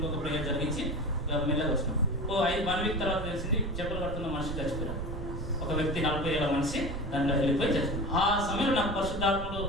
ప్రేయర్ జరిగించి మెల్లగా వచ్చినాం. 1 week తర్వాత తెలిసింది చెప్పులు కడుతున్న మనిషి చచ్చిపోయారు. ఒక వ్యక్తి 40 ఏళ్ల మనిషి దాంట్లో వెళ్ళిపోయి చచ్చిపోయారు. ఆ సమయంలో నాకు పరిశుద్ధాత్మలు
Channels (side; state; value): right; noise; rumble, 6 dB below the sound